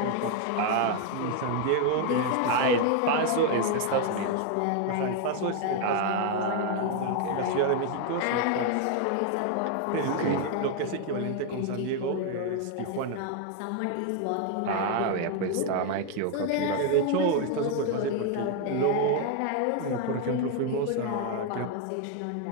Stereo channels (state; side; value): different; both; correlation 0.01